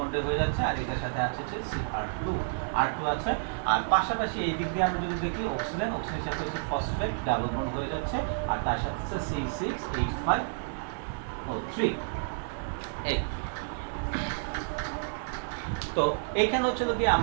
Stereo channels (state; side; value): silent; left; digital silence